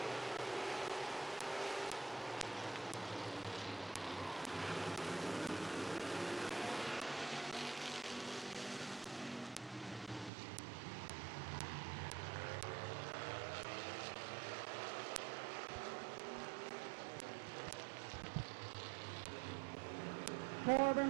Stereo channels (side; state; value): left; drops out; at 10.3 s